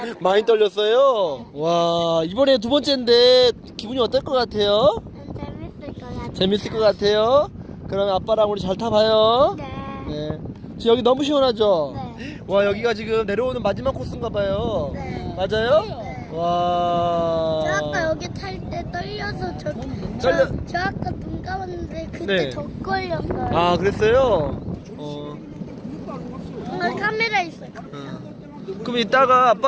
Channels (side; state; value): both; identical; correlation 1.00